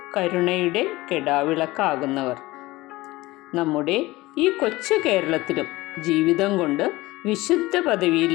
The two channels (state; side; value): quieter; right; 19.5 dB